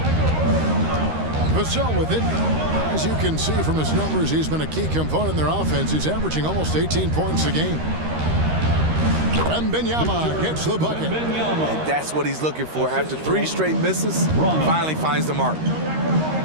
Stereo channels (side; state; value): left; late; 13 ms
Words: Vassell with it. As you can see from his numbers, he's been a key component in their offense. He's averaging almost 18 points a game. Wembanyama gets the bucket. And that's what he's looking for. After 3 straight misses, finally finds the mark.